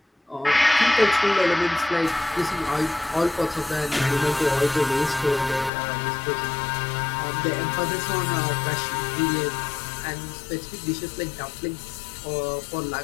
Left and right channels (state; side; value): drops out; right; at 5.7 s